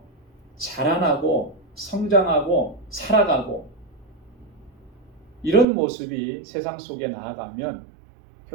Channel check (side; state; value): left; drops out; at 5.7 s